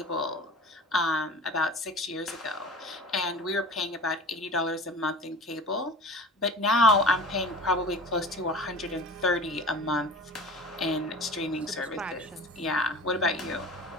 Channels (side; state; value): both; normal; correlation 0.38